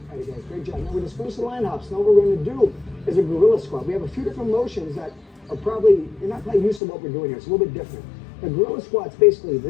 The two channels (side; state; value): right; drops out; at 6.8 s